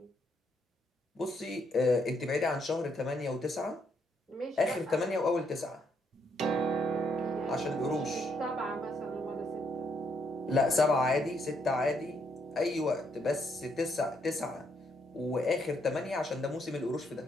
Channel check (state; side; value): normal; both; correlation 0.74